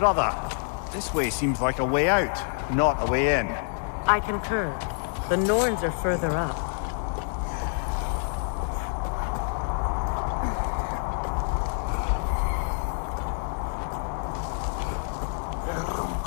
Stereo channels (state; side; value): silent; right; digital silence